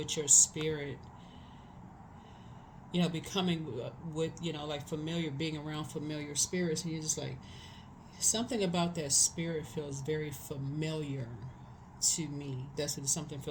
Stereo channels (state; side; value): identical; both; correlation 1.00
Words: your spirit, becoming with, like familiar, being around familiar spirits. And you're just like, something about that spirit feels very familiar to me. That's what something